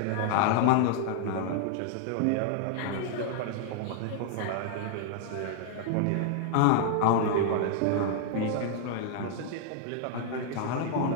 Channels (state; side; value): different; both; correlation -0.01